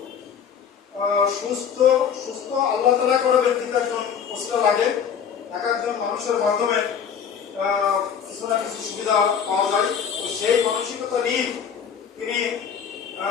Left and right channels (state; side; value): quieter; right; 7.5 dB